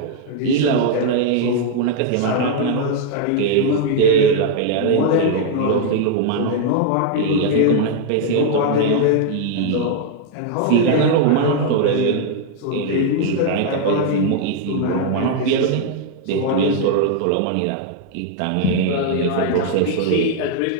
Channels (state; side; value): different; both; correlation 0.00